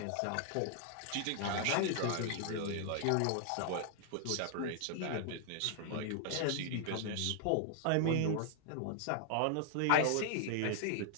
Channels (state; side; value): different; both; correlation -0.01